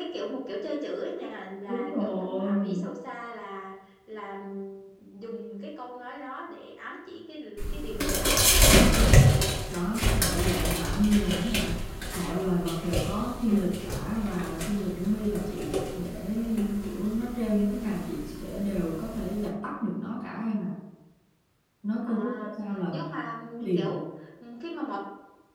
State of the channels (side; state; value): both; identical; correlation 1.00